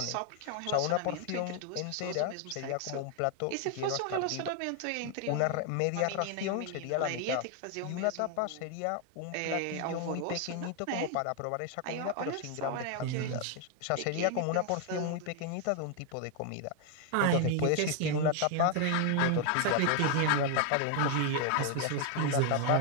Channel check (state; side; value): different; both; correlation 0.00